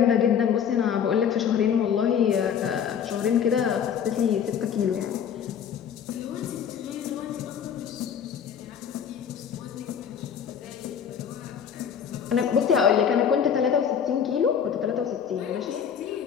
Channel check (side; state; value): right; quieter; 8.0 dB